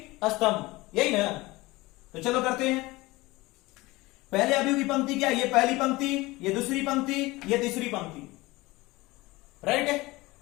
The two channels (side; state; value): right; quieter; 21.0 dB